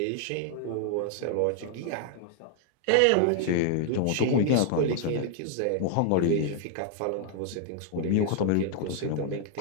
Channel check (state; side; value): different; both; correlation 0.00